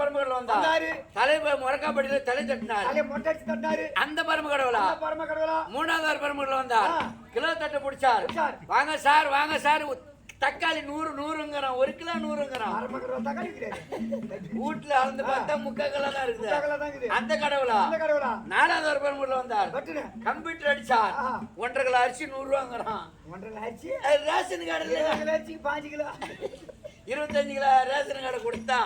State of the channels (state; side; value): identical; both; correlation 1.00